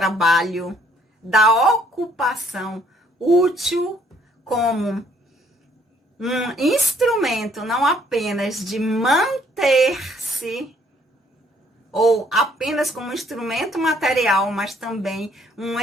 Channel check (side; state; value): both; normal; correlation 0.64